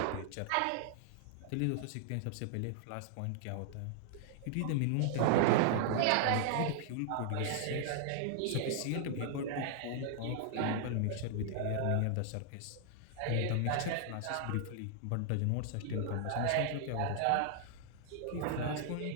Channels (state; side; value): different; both; correlation 0.00